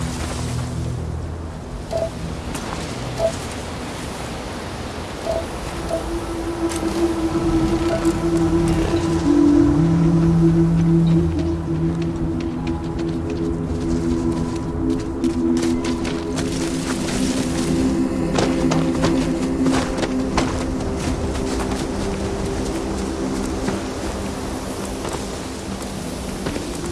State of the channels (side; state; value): both; identical; correlation 1.00